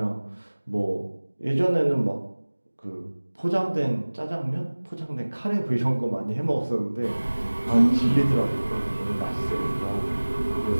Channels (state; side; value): inverted; both; correlation -1.00